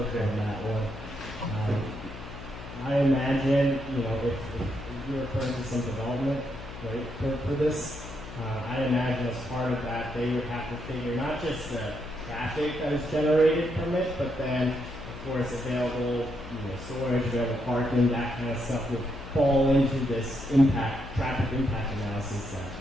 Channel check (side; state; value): left; noise; hum, 12 dB below the sound